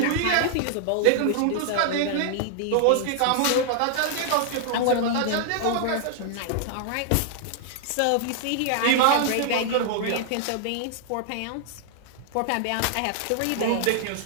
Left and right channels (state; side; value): different; both; correlation -0.01